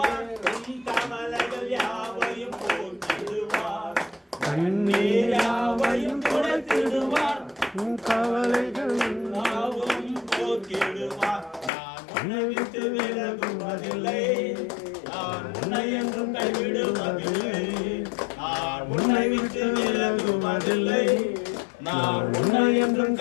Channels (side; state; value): right; drops out; at 11.7 s